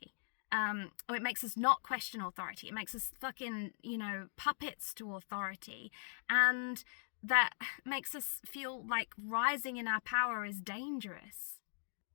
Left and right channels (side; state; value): right; silent; digital silence